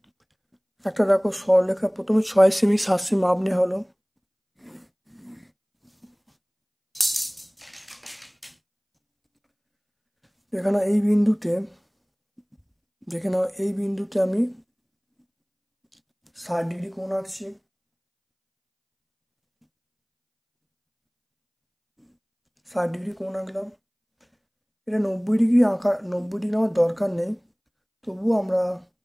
একটা দেখো সরলরেখা, প্রথমে 6 সেমি 7 সেমি মাপ নেওয়া হলো। এখানে এই বিন্দুতে, দেখে নাও এই বিন্দুতে আমি 60 ডিগ্রি কোণ আঁকছি। ষাট ডিগ্রি কোণ আঁকলাম। এটা 90 ডিগ্রি আঁকা, 90 ডিগ্রি আমার দরকার নেই, তবুও আমরা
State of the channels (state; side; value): identical; both; correlation 1.00